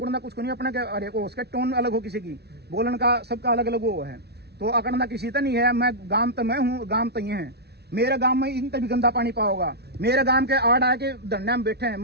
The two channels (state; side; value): late; left; 0.48 ms